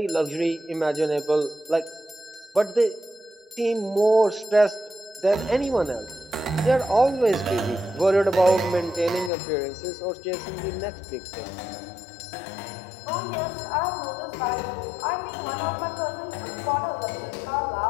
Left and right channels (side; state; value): right; drops out; at 9.3 s